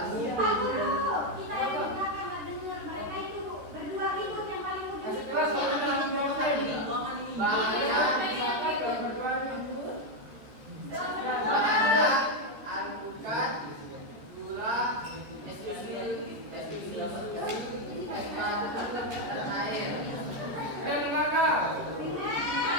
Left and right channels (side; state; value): left; late; 14 ms